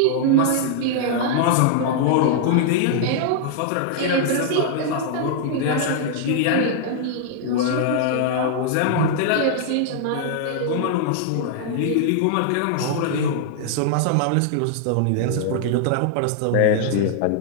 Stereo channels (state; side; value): different; both; correlation -0.01